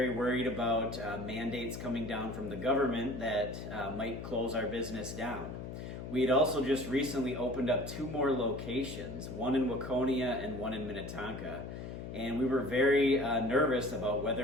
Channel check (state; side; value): noise; left; hum, 8 dB below the sound